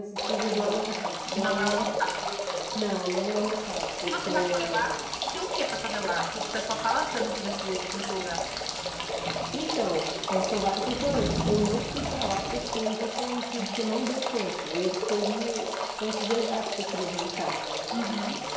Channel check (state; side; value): identical; both; correlation 1.00